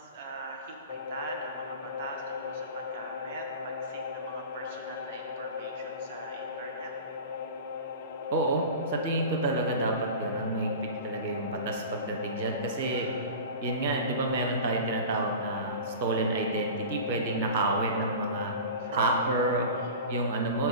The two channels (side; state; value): both; inverted; correlation -0.34